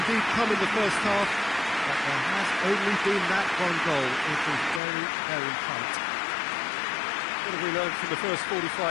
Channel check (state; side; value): drops out; right; at 4.8 s